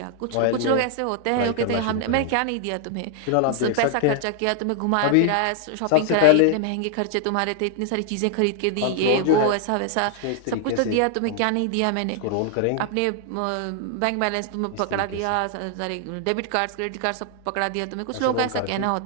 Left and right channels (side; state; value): both; different; correlation 0.00